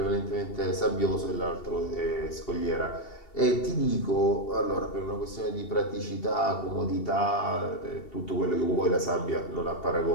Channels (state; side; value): late; right; 2.7 ms